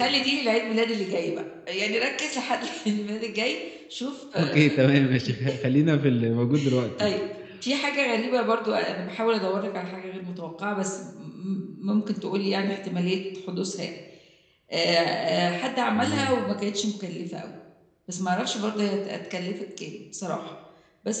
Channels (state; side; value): identical; both; correlation 1.00